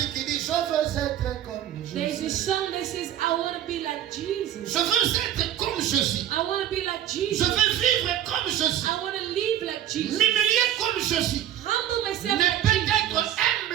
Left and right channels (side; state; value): left; quieter; 11.3 dB